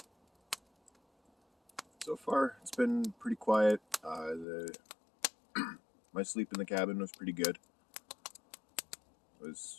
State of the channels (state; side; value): drops out; right; at 4.5 s